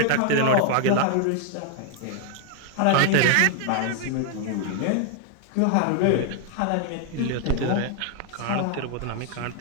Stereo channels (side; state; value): both; different; correlation 0.00